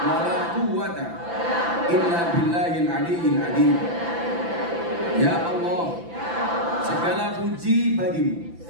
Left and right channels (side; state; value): left; late; 5.9 ms